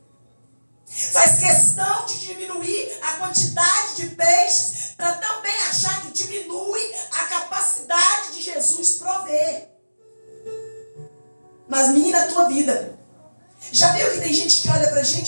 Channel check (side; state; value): both; inverted; correlation -1.00